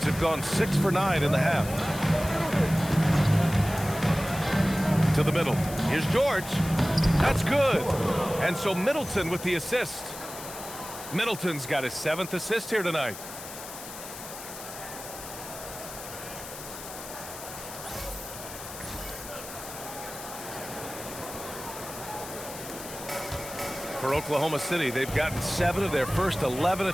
have gone 6 for 9 in the half. To the middle. Here's George. That's good. And so Middleton with the assist. Middleton's got his 7th assist here tonight. For Oklahoma City, they've gotten 7 of their first 11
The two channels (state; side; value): noise; left; hiss, 12 dB below the sound